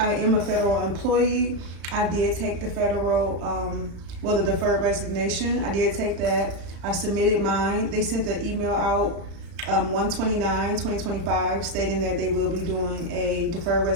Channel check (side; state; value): left; late; 35 ms